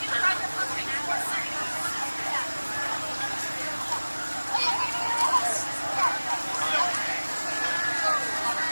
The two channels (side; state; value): both; inverted; correlation -1.00